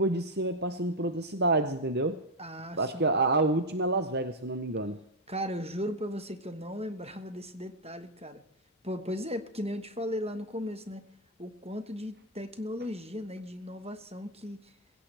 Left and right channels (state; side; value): normal; both; correlation 0.01